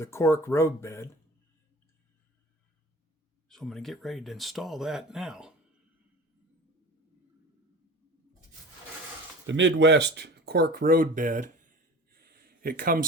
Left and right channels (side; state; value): both; normal; correlation 0.38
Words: Cork roadbed. So I'm going to get ready to install that now. The Midwest Cork roadbed, it